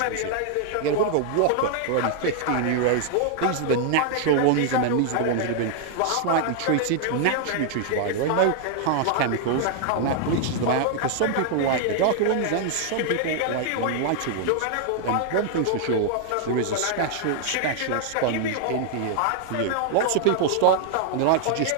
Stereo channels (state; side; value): different; both; correlation 0.00